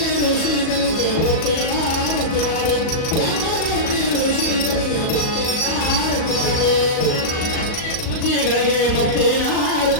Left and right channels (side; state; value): right; late; 38 ms